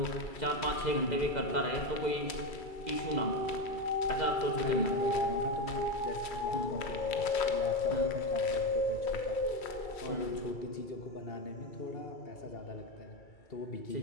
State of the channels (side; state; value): right; late; 2.3 ms